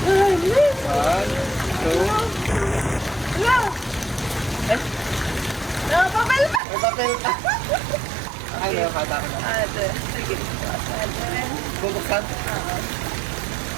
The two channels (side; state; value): left; drops out; at 6.6 s